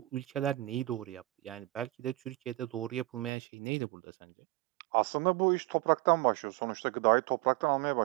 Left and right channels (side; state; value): left; drops out; at 3.3 s